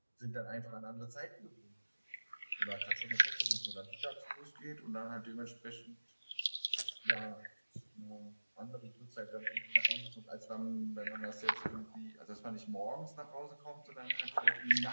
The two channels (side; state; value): both; inverted; correlation -1.00